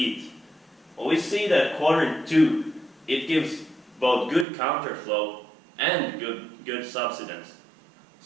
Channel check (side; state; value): left; drops out; at 4.5 s